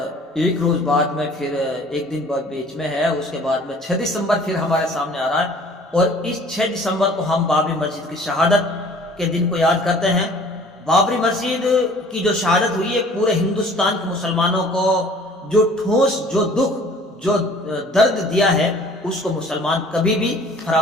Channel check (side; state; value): both; normal; correlation 0.51